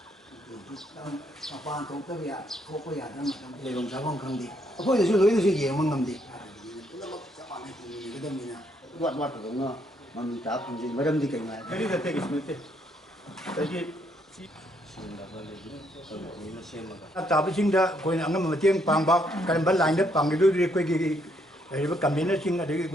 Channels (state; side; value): normal; both; correlation 0.72